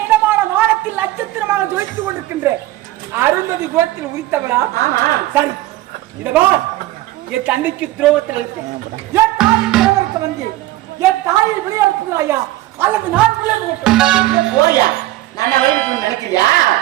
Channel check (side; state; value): left; quieter; 16.4 dB